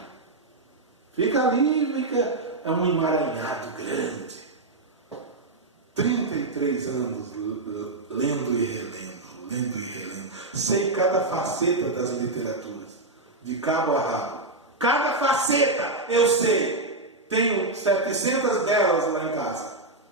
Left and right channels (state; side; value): quieter; left; 3.0 dB